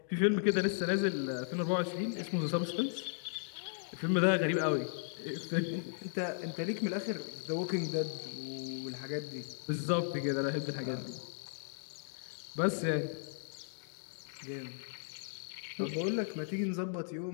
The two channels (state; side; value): silent; right; digital silence